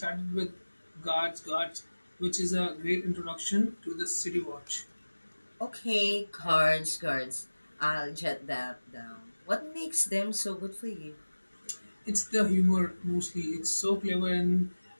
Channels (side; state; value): both; inverted; correlation -1.00